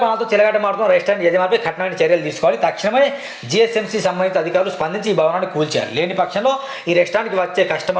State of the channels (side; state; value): both; identical; correlation 1.00